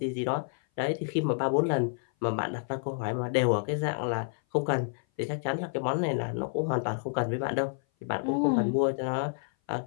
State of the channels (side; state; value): right; silent; 56 dB below the other